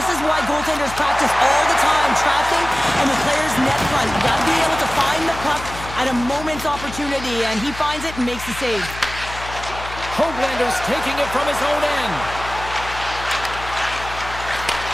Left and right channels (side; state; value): left; noise; hum, 12 dB below the sound